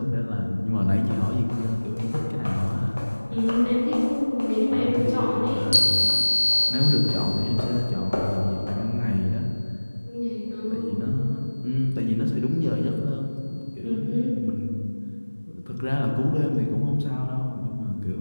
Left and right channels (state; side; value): inverted; both; correlation -1.00